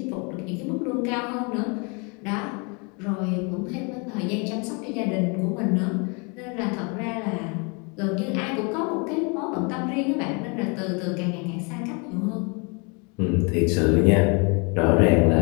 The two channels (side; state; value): right; quieter; 32.6 dB